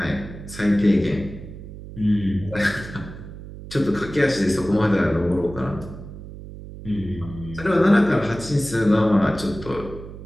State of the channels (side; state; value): right; noise; hum, 13 dB below the sound